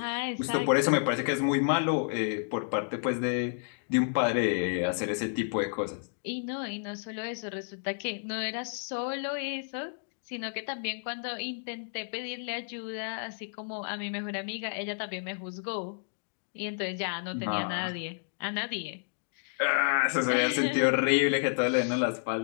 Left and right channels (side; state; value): right; silent; digital silence